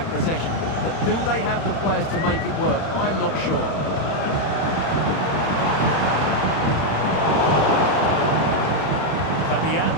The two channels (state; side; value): late; right; 31 ms